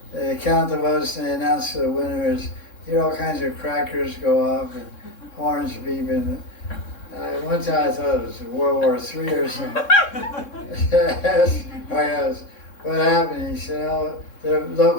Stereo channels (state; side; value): late; right; 3.6 ms